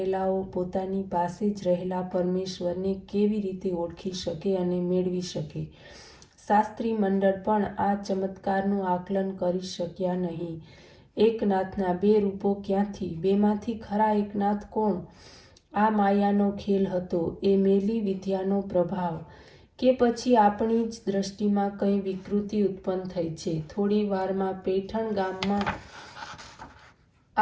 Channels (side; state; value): both; identical; correlation 1.00